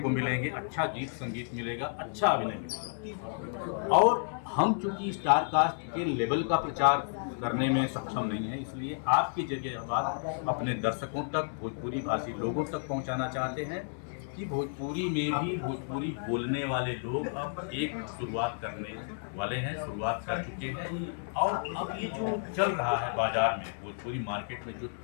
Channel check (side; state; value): right; silent; digital silence